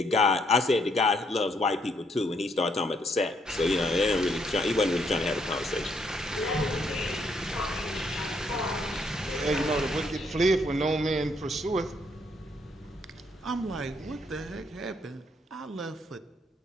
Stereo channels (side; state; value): both; normal; correlation 0.72